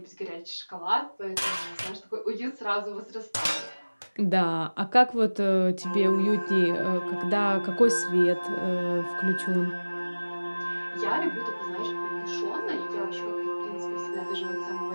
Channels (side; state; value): both; inverted; correlation -1.00